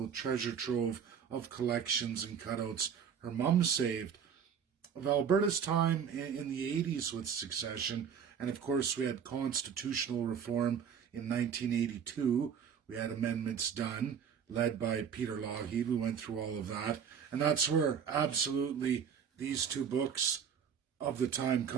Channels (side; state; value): left; quieter; 7.5 dB